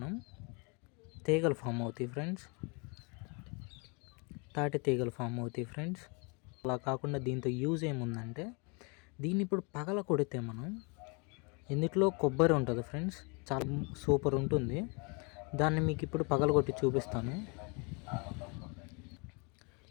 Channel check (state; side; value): quieter; right; 32.4 dB